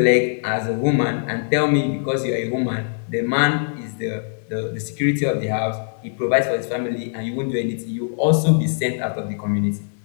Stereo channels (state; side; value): silent; right; 64 dB below the other